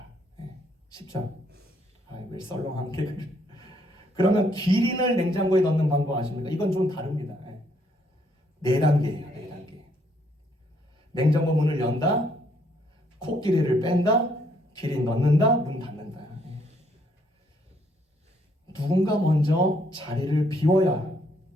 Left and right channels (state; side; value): normal; both; correlation 0.69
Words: 쉽죠? 왜 썰렁한 게 그래. 그러면 기린을 냉장고에 넣는 방법 아십니까? 이건 좀 다릅니다. 4단계예요. 4단계. 냉장고 문을 연다, 코끼리를 뺀다, 기린 넣는다, 문 닫는다. 누군가 먼저 자리를 비워야